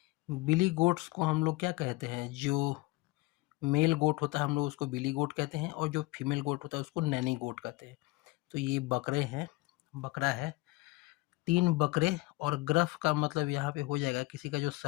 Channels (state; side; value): quieter; right; 21.6 dB